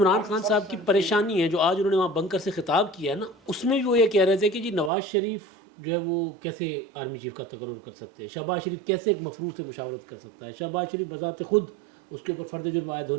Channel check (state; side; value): drops out; left; at 4.9 s